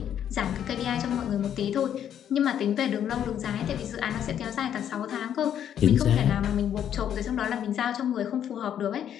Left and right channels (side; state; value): right; quieter; 9.7 dB